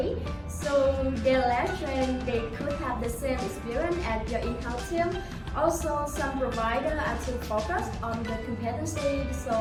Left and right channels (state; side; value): identical; both; correlation 1.00